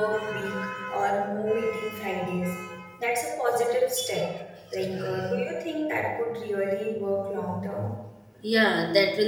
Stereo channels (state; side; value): identical; both; correlation 1.00